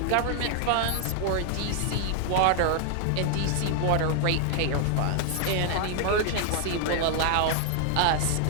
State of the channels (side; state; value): both; different; correlation 0.00